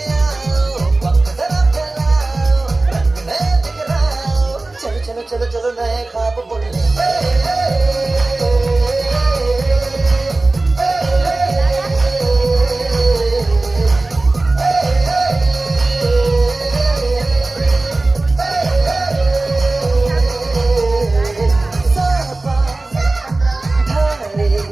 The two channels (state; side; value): quieter; left; 3.1 dB